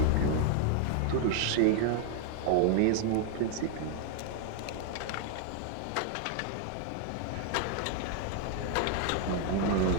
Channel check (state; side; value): different; both; correlation 0.00